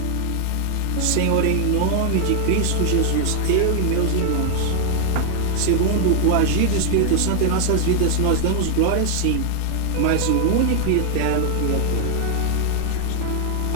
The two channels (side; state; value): both; different; correlation 0.00